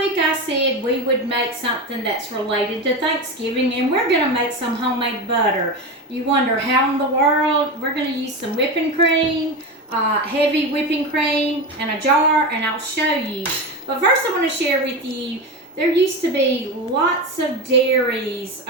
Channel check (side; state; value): both; normal; correlation 0.21